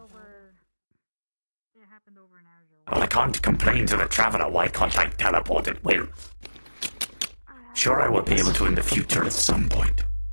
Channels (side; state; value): both; inverted; correlation -1.00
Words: Well, I can't complain to the traveler. Why can't I teleport at will? Sure, I will be able to in the future at some point.